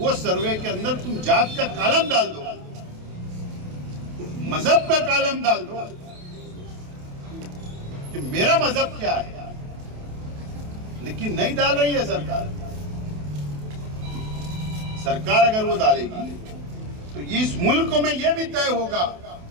सर्वे के अंदर तुम जात का कॉलम डाल दो, मजहब का कॉलम डाल दो कि मेरा मजहब क्या है। लेकिन नहीं डाल रही है सरकार। सरकार अगर वो डालेगी तो ये इस मुल्क में यह भी तय होगा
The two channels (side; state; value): left; late; 28 ms